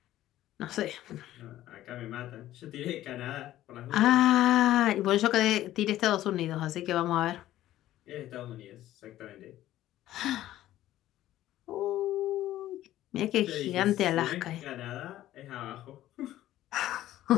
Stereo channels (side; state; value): right; quieter; 14.0 dB